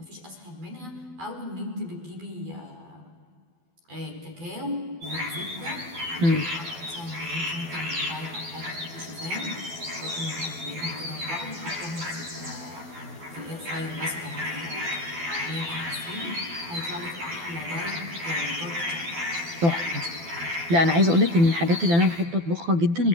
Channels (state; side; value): late; left; 12 ms